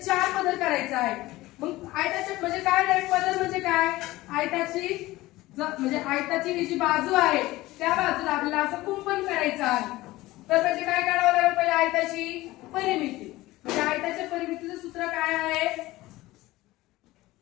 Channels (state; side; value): quieter; right; 18.3 dB